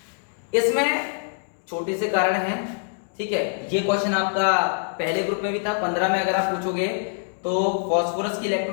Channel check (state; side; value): silent; right; digital silence